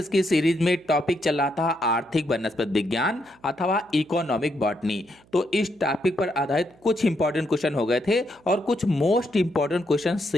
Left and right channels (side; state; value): right; noise; hum, 30 dB below the sound